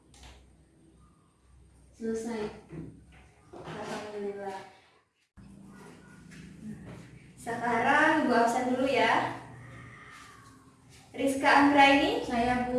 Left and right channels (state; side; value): identical; both; correlation 1.00